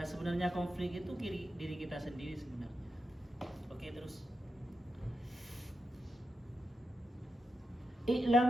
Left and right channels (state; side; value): normal; both; correlation 0.87